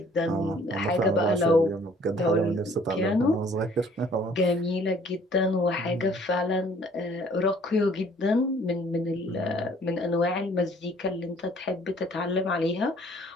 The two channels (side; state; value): both; normal; correlation 0.57